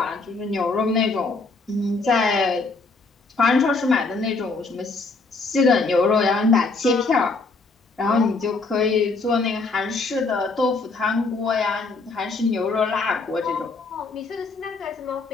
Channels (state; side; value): quieter; right; 3.9 dB